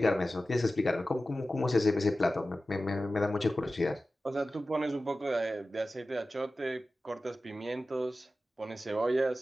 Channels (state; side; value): normal; both; correlation 0.95